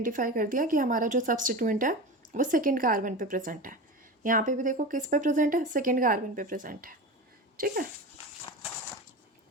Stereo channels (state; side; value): normal; both; correlation 0.27